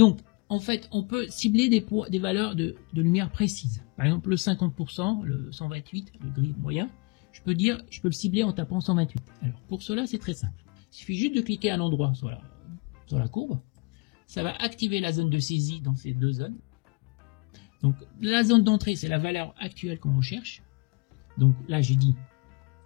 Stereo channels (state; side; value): quieter; right; 30.0 dB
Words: en fait, on peut cibler des valeurs de lumière précises. Par exemple, le 50%, le 128, le gris moyen, je peux le cibler en tapant 128. Alors, pour cela, c'est très simple. Il suffit juste de cliquer à un endroit sur la courbe. Ça va activer la zone de saisie dans ces deux zones. Donc, la zone d'entrée, c'est la valeur actuelle qu'on recherche. Donc, là, j'ai dit